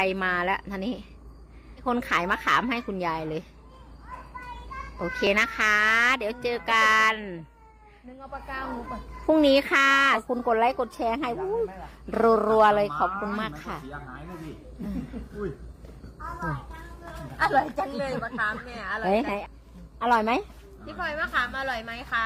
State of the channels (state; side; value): identical; both; correlation 1.00